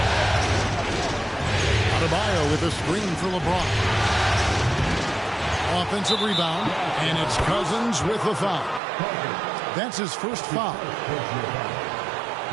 Adebayo with a screen for LeBron. Offensive rebound. And it's Cousins with the foul. That's his first foul.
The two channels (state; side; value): drops out; left; at 8.8 s